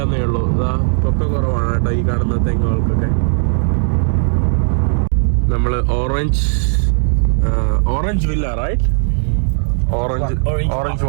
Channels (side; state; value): left; silent; digital silence